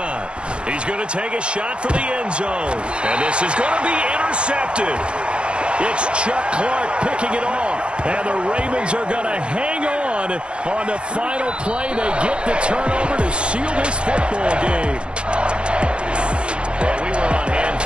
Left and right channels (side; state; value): left; late; 0.056 ms